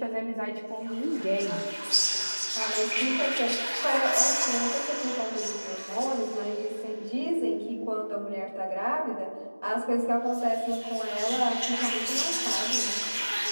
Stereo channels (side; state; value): both; inverted; correlation -1.00